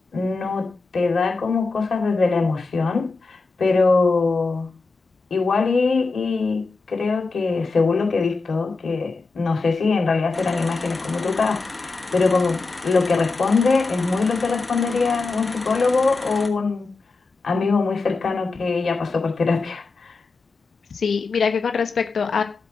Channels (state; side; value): quieter; right; 3.9 dB